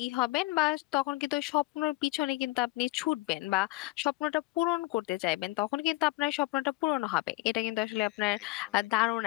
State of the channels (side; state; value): right; quieter; 20.5 dB